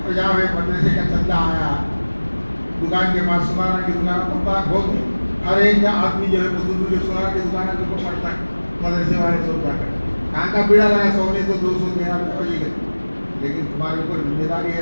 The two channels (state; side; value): inverted; both; correlation -1.00